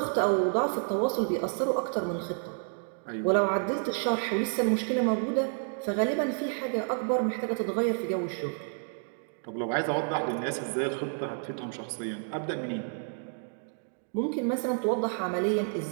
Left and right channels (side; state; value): left; silent; 55 dB below the other